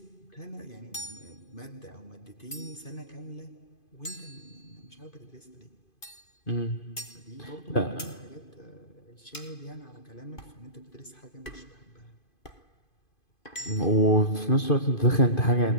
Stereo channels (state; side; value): late; right; 2.5 ms